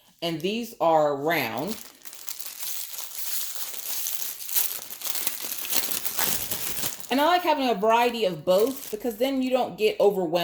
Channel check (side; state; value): both; identical; correlation 1.00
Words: and these are round. And I like having a variety of both because then you don't get